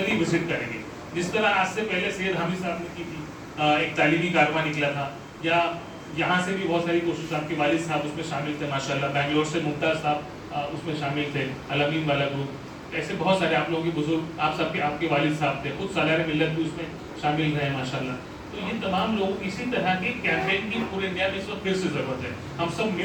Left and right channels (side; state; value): both; identical; correlation 1.00